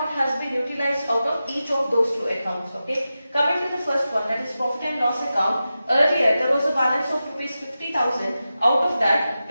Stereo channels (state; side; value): inverted; both; correlation -0.93